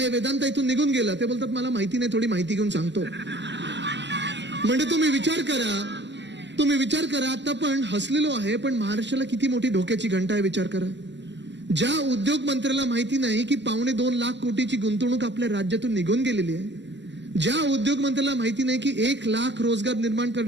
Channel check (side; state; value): left; late; 0.52 ms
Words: वेदांत इथून निघून गेला, ते बोलतात मला माहिती नाही, थोडी माहिती घेऊन सांगतो. म्हणजे तुम्ही विचार करा, आता पण हसलेलो आहे, पण महाराष्ट्राला किती मोठी धोक्याची घंटा आहे विचार करा. ज्या उद्योग मंत्र्याला माहिती नाही की 2.25 लाख कोटीची गुंतवणूक आपल्या राज्यातून निघून गेलेली आहे, ज्या उद्योग मंत्र्याला माहिती नाही की 1 लाख रोजगार निर्माण